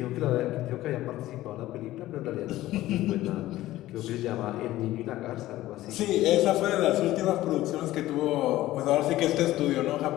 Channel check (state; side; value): quieter; right; 15.7 dB